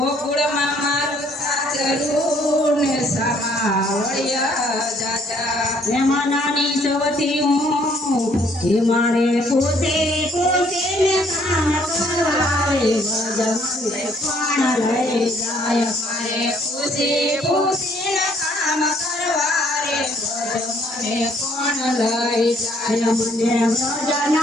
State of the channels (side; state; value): both; normal; correlation 0.64